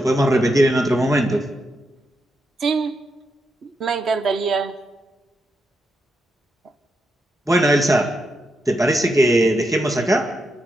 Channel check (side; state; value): both; normal; correlation 0.84